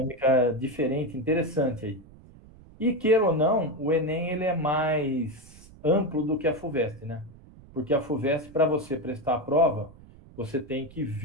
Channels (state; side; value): noise; right; rumble, 22 dB below the sound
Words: diferente, interessante aí. E queira ou não, o Enem ele é mais amplo do que a FUVEST, né? Porque a FUVEST, para você prestar a prova, você tem que